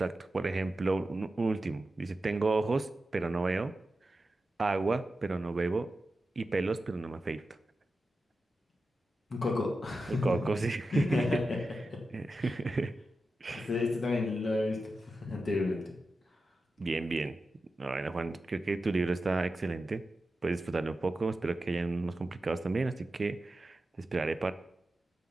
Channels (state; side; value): normal; both; correlation 0.92